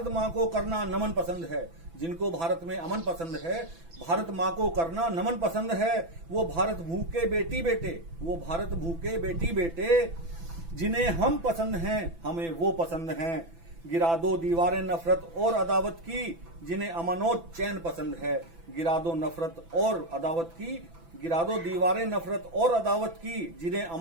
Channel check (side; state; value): left; late; 6.0 ms